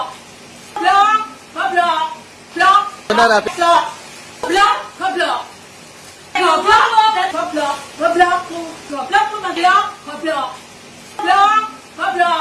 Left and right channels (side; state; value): both; identical; correlation 1.00